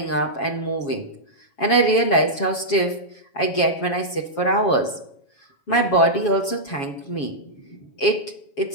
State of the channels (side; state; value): right; late; 7.2 ms